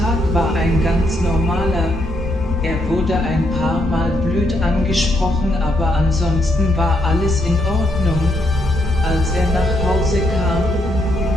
war ein ganz normaler. Er wurde ein paar Mal blöd angesprochen, aber ansonsten war alles in Ordnung. Als er nach Hause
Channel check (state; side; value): normal; both; correlation 0.77